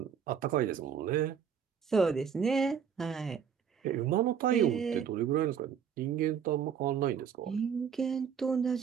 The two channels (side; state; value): left; quieter; 7.6 dB